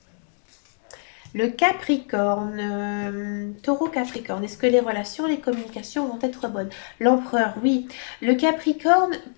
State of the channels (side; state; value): right; silent; 62 dB below the other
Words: Le Capricorne, taureau Capricorne, est-ce que les relations, les communications vont être bonnes? L'empereur, oui. Le Capricorne,